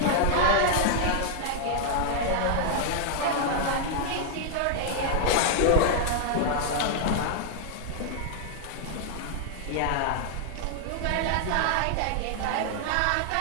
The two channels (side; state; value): both; different; correlation -0.01